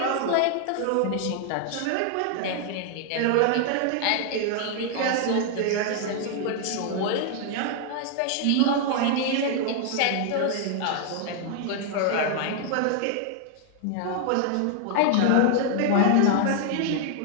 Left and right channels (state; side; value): different; both; correlation 0.00